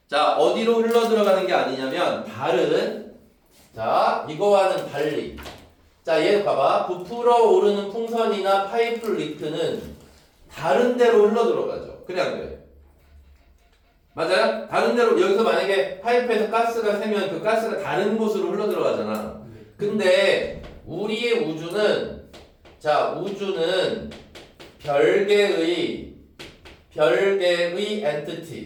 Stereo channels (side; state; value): both; identical; correlation 1.00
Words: 자, 어디로 흘러 들어가는 게 아니냐면 다른 자, 이거와는 달리 자, 얘 봐봐. 부풀어 오르는 풍선이나 파이프 리크는 다른 데로 흘러 들어가죠. 그래 안 그래? 맞아요? 다른 데로 여기서 만약에 파이프에서 가스가 새면 그 가스가 다른 곳으로 흘러 들어가잖아. 근데 우리의 우주는 자, 우주는 별개의